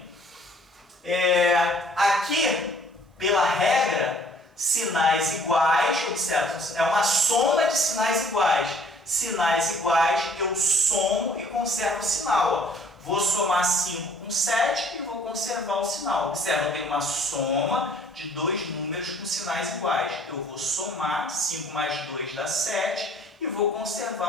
Aqui, pela regra, sinais iguais, observa, é uma soma de sinais iguais. Sinais iguais, eu somo e conservo o sinal. Ó. Vou somar 5 com 7 e vou conservar o sinal. Observa, eu tenho uma soma de dois números com sinais iguais. Eu vou somar, 5 mais 2 dá 7, e vou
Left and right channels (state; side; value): normal; both; correlation 0.57